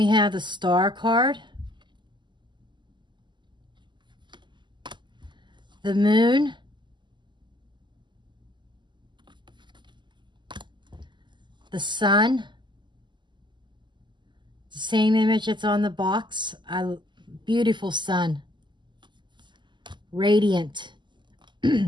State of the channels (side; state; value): left; late; 0.22 ms